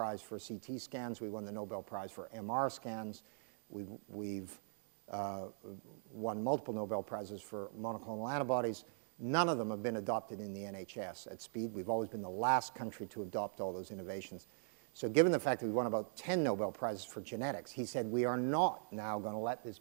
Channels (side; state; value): left; silent; digital silence